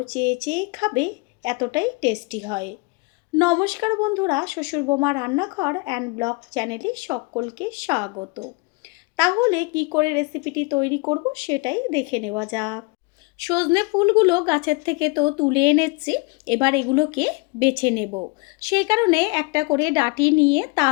চেয়ে চেয়ে খাবে, এতটাই টেস্টি হয়। নমস্কার বন্ধুরা, শ্বশুর বোমা রান্নাঘর অ্যান্ড ব্লগ চ্যানেলে সকলকে স্বাগত। তাহলে কি করে রেসিপিটি তৈরি করব সেটাই দেখে নেওয়া যাক। সজনে ফুলগুলো গাছের থেকে তো তুলে এনেছি, এবার এগুলোকে বেছে নেব। সেই কারণে একটা করে ডাঁটি নিয়ে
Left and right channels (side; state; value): right; quieter; 27.6 dB